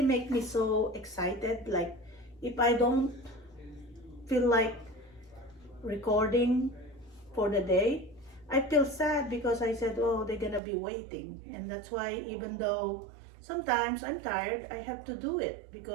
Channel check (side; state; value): left; drops out; at 10.6 s